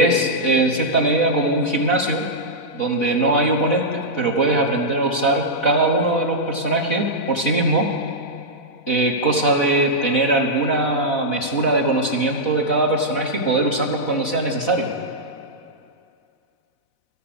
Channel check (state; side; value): late; right; 4.0 ms